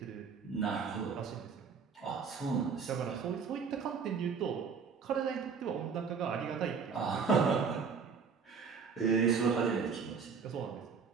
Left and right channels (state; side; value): quieter; left; 5.8 dB